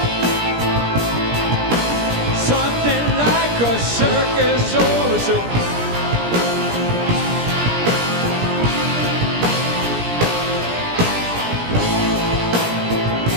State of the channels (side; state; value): left; late; 17 ms